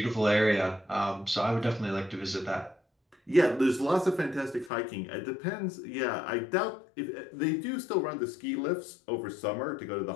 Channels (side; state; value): right; drops out; at 4.7 s